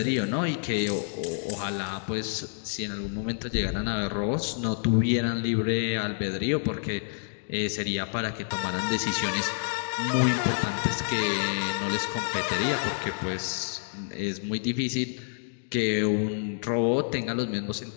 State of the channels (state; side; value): silent; right; digital silence